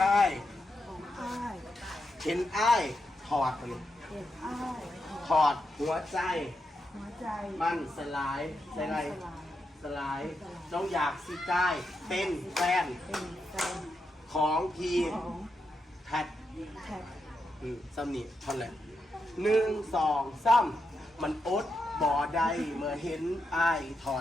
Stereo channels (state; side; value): normal; both; correlation 0.85